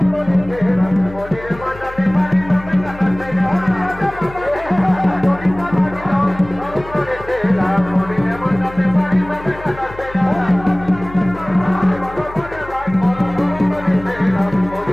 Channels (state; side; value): noise; left; hum, 16 dB below the sound